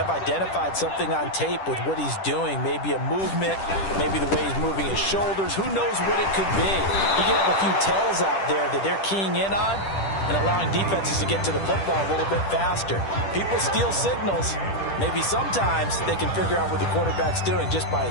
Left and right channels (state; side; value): late; right; 10 ms